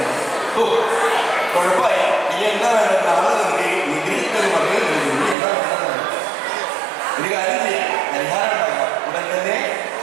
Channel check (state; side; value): drops out; left; at 5.4 s